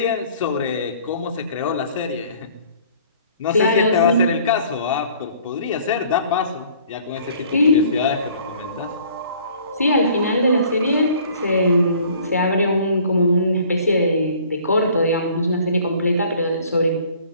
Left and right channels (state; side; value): inverted; both; correlation -0.54